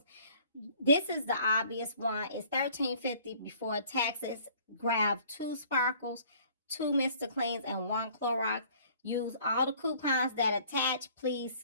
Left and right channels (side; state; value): both; inverted; correlation -0.55